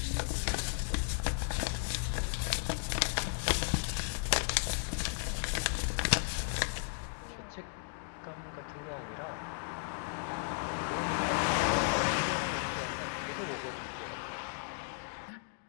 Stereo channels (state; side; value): silent; right; digital silence